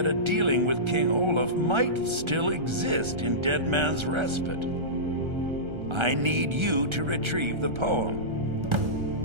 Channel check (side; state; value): left; late; 1.3 ms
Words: dealing with King Olaf might still exist in Dead Man's Respite. I need you to retrieve the poem.